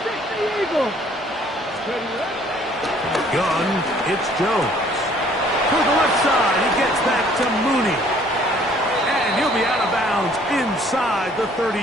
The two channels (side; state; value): both; normal; correlation 0.59